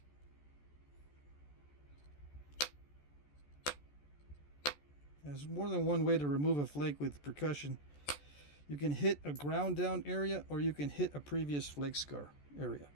There's more than one way to remove a flake with percussion. You can hit a ground down area, or you can hit a previous flake scar area.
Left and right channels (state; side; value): late; right; 14 ms